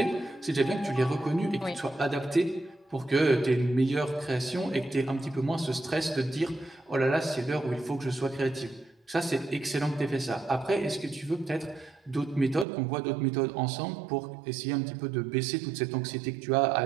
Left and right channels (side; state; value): left; drops out; at 12.7 s